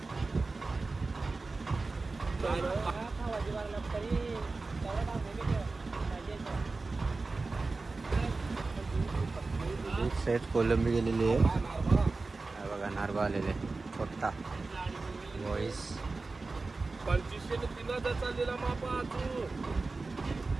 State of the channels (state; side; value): quieter; left; 3.7 dB